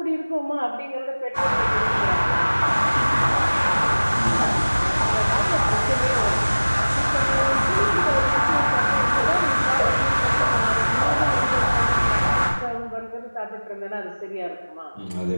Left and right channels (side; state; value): both; inverted; correlation -1.00